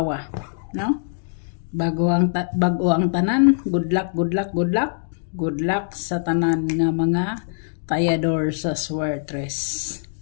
no? Bago ang tanan, good luck, good luck, good luck. Good luck sa tanan nga mga tayador sa swertres.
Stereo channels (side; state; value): right; silent; digital silence